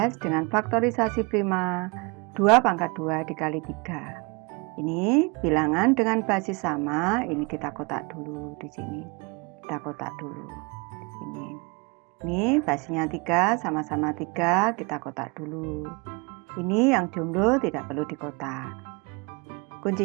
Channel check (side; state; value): left; quieter; 29.3 dB